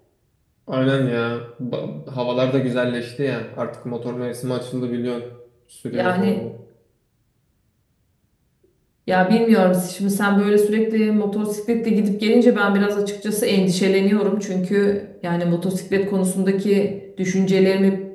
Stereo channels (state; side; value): identical; both; correlation 1.00